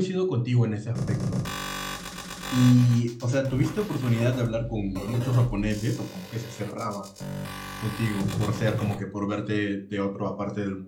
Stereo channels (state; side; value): identical; both; correlation 1.00